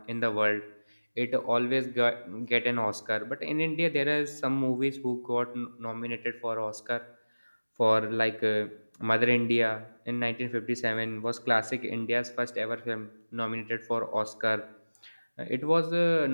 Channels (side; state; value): both; inverted; correlation -1.00